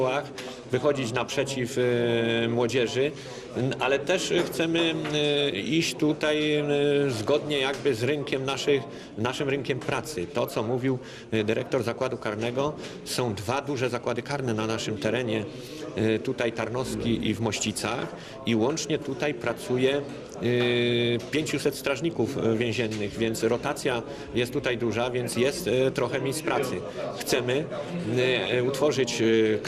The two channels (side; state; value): both; identical; correlation 1.00